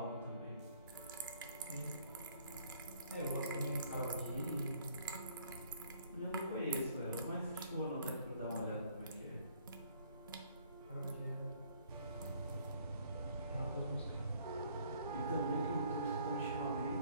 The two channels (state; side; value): inverted; both; correlation -0.62